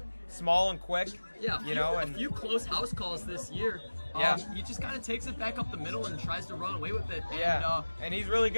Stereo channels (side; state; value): both; inverted; correlation -1.00